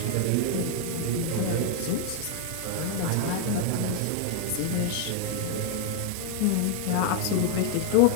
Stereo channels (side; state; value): both; different; correlation 0.00